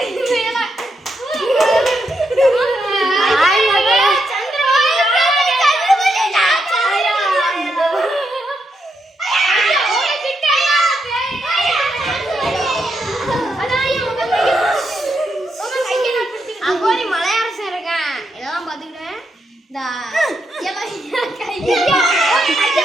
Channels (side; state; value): both; normal; correlation 0.82